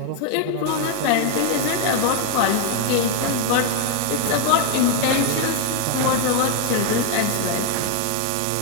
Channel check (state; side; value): different; both; correlation 0.01